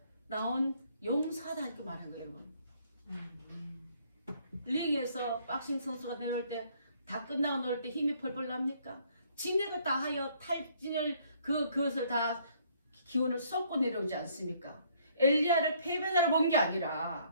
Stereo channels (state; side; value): inverted; both; correlation -0.64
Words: 나온 용사다 이렇게 말한 거예요 여러분. 링에서 박싱 선수가 내려올 때 다 끝나고 놀 때 힘이 펄펄 납니까? 진액을 다 하여 탈진을 그것을 다 기운을 쏟고 내려오지 않습니까? 엘리야를 패배자로 본 게